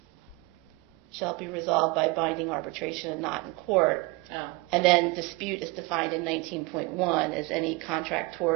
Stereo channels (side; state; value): left; quieter; 25.3 dB